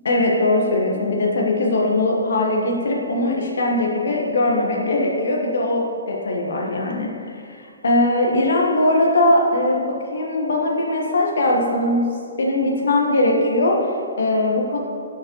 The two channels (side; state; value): both; inverted; correlation -0.49